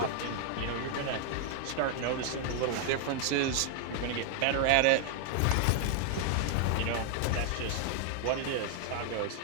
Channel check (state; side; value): different; both; correlation 0.00